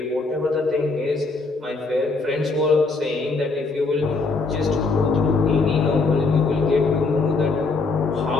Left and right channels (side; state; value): right; quieter; 3.9 dB